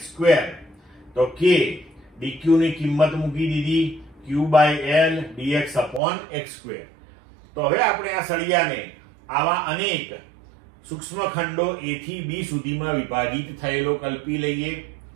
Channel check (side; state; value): left; drops out; at 6.0 s